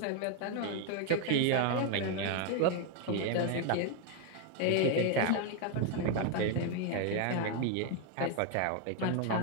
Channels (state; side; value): different; both; correlation 0.01